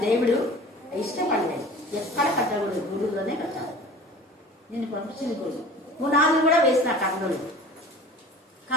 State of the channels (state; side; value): normal; both; correlation 0.41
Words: దేవుడు ఇష్టపడలేదు. ఎక్కడ కట్టకూడదు, గురువులోనే కట్టాలి. నేను పంపించింది గురువు. పునాదులు కూడా వేసిన కట్టలు,